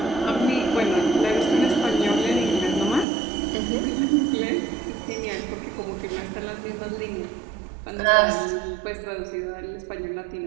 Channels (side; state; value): left; drops out; at 3.1 s